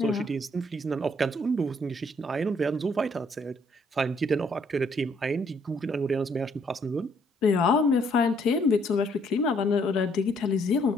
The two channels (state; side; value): normal; both; correlation 0.67